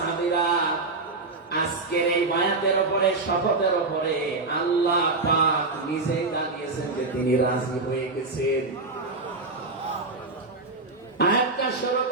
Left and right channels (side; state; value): left; quieter; 3.5 dB